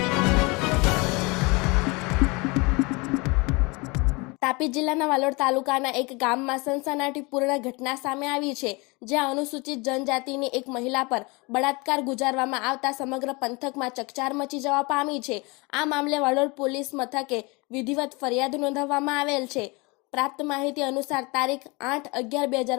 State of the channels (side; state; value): right; quieter; 26.7 dB